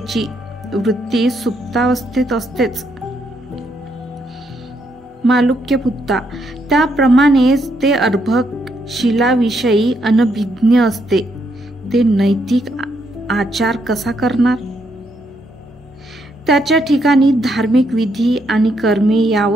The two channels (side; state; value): both; normal; correlation 0.76